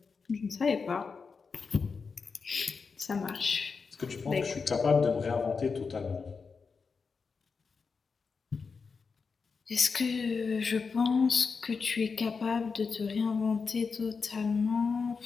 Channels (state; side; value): quieter; right; 5.1 dB